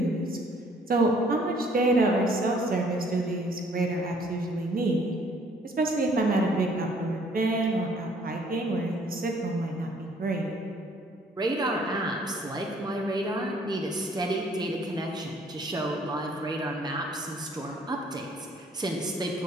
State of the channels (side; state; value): both; normal; correlation 0.61